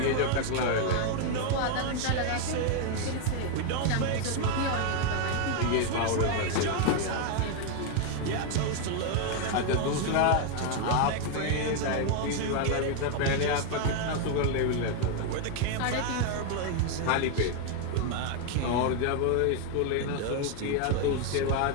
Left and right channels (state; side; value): different; both; correlation 0.01